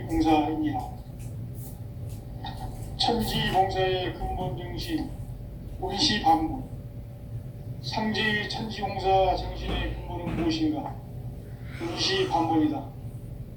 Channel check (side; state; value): both; identical; correlation 1.00